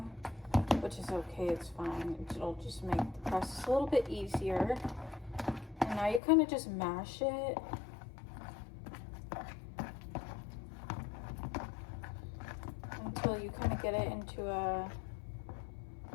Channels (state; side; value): drops out; right; at 6.2 s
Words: which is okay, it's fine. It'll just make the process a little bit easier. And now you kind of just mash it. Until you kind of get it into a